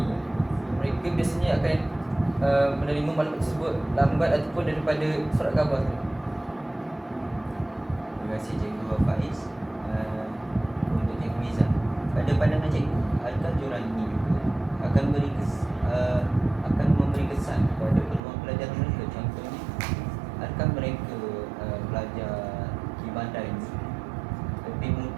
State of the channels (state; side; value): drops out; left; at 18.2 s